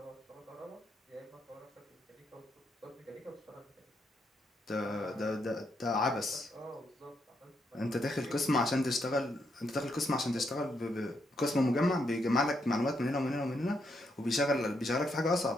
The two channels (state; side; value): normal; both; correlation 0.78